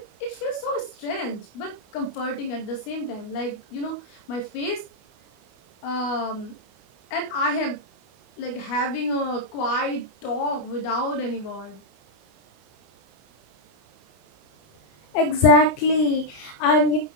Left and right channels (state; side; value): late; right; 21 ms